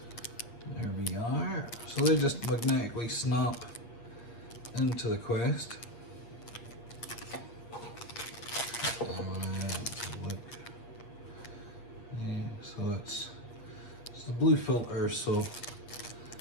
there we are. So they just magnetically snap into the Quest. Look. Yeah, so it's the blue filter, so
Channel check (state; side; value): late; right; 8.5 ms